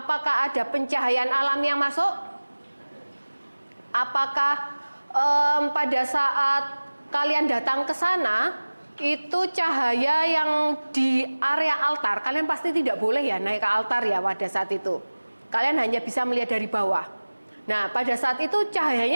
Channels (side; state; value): both; inverted; correlation -1.00